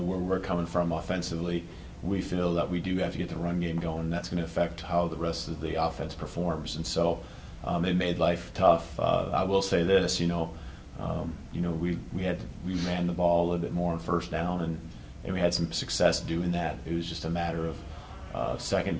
we're coming from offensively, we feel that we do have to get the run game going, and that's going to affect how the rest of the offense performs. And so it made life tough. I will say this, we ran the ball a little bit more on first down, and we had some success doing that. It was just a matter of second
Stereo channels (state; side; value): identical; both; correlation 1.00